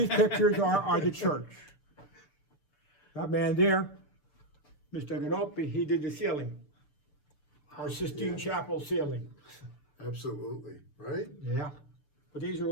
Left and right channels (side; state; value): right; late; 6.8 ms